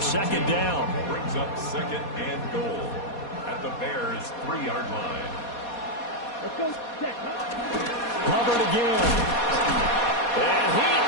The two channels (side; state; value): right; late; 4.2 ms